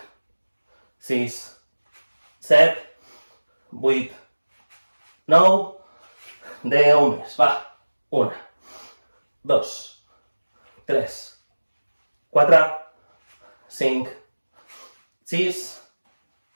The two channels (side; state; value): both; inverted; correlation -1.00